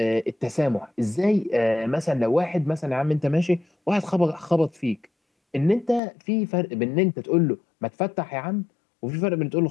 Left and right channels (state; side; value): drops out; right; at 6.0 s